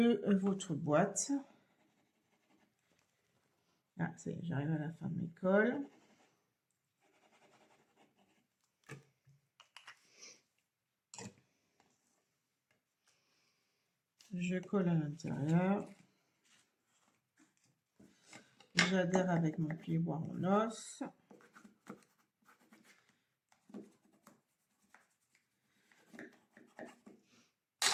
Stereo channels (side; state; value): both; identical; correlation 1.00